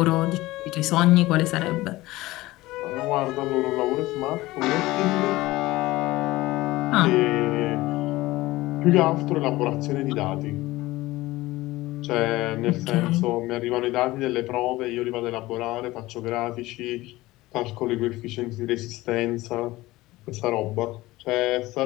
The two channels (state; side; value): quieter; right; 18.7 dB